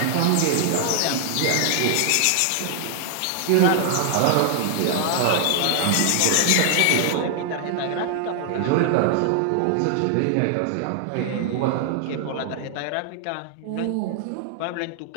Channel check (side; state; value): both; different; correlation 0.00